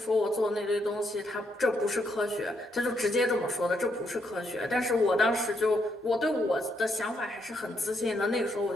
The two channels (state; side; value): normal; both; correlation 0.76